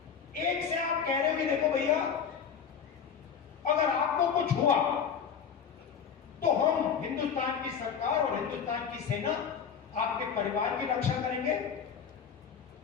एक से आप कह रहे हो कि देखो भैया, अगर आपको कुछ हुआ तो हम हिंदुस्तान की सरकार और हिंदुस्तान की सेना आपके परिवार की रक्षा करेंगे,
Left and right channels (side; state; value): right; quieter; 7.1 dB